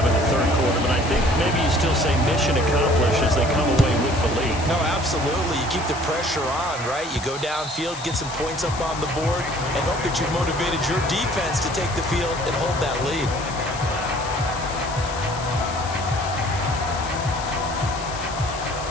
in the 3rd quarter, but I think maybe you still say mission accomplished as they come away with the lead. No, absolutely. You keep the pressure on, right? You go downfield, get some points up on the board, and hope that you've motivated your defense to take the field and hold that lead.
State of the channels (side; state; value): left; noise; hiss, 12 dB below the sound